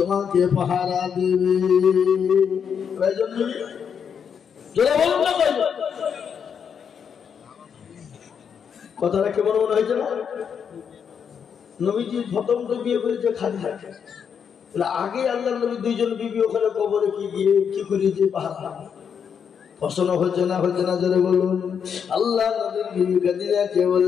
পাহারা দেবে। কয়জন বিবি? জোরে বলুন না কয়জন? কথাটা কেমন মনে হয়েছে না? নবীজি প্রথম তো বিয়ে করেছে খাদিজা, আগে আল্লাহ নবী দুইজন বিবি ওখানে কবরে কি গিয়ে কি করিয়েছে পাহারা পছন্দ হচ্ছে না জোরে বলুন। আল্লাহ নবীর বিবি খাদিজাকে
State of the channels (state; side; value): quieter; right; 7.3 dB